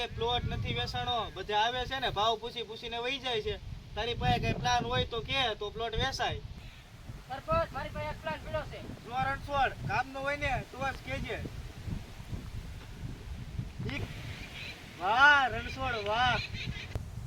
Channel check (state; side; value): identical; both; correlation 1.00